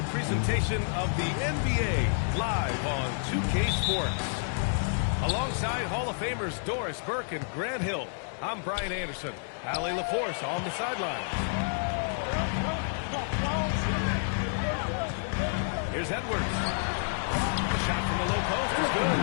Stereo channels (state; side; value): silent; right; digital silence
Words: presentation of the NBA live on 2K Sports. Alongside Hall of Famers Doris Burke and Grant Hill, I'm Brian Anderson. Allie LaForce on the sidelines. Here's Edwards. The shot from the low post is good.